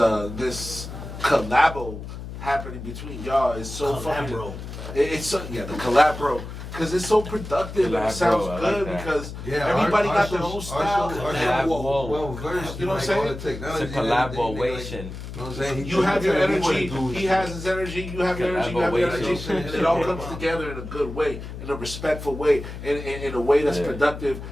collabo happening between y'all is so fucking. Collabro. It's so the collabro, because it's so productive and it sounds I like good that. because Yeah, everybody our got their show- own style. Our Yeah, show whoa. well versed. You know what I'm like, saying? all the technology It's a and everything, collaboration. You know what I'm saying? You have your tell me what energy, to do. he has his energy, you have your energy, you have your energy, Collaboration. and it all comes together in a good way, in a respectful way, in a way that's Yeah. productive,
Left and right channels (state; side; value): noise; left; hum, 10 dB below the sound